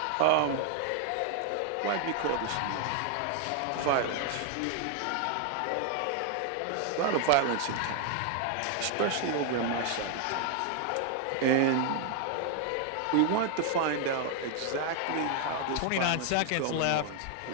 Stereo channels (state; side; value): different; both; correlation 0.00